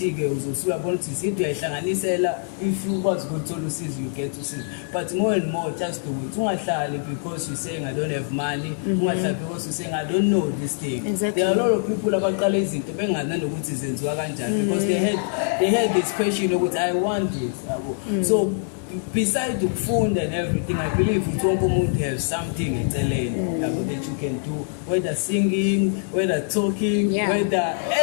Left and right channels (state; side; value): silent; right; 63 dB below the other